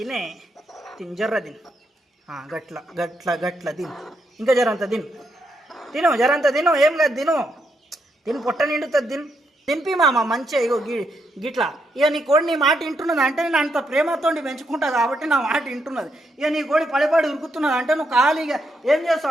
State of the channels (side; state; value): both; normal; correlation 0.79